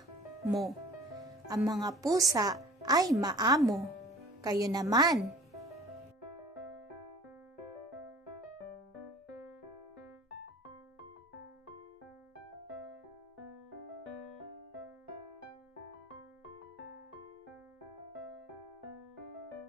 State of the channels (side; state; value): both; normal; correlation 0.46